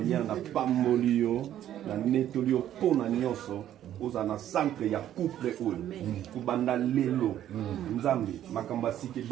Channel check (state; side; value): quieter; left; 11.5 dB